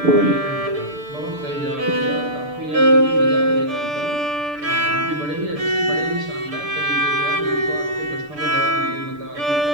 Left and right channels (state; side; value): late; left; 6.8 ms